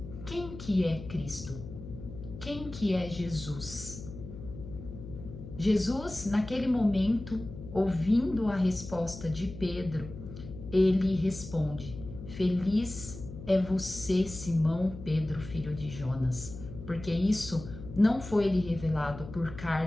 quem que é Cristo? Quem que é Jesus? Jesus, naquele momento, ouvindo a resposta de Pedro, ele responde: "Feliz é você, Simão Pedro, filho de Jonas, porque isso não foi lhe revelado por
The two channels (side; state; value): left; noise; hum, 12 dB below the sound